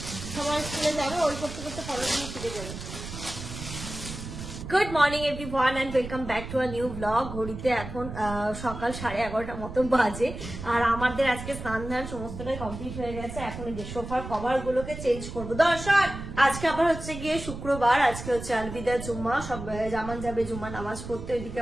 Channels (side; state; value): right; noise; rumble, 9 dB below the sound